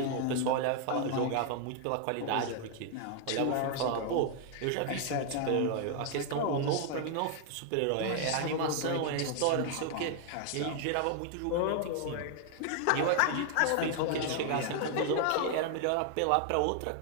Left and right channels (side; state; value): both; different; correlation 0.00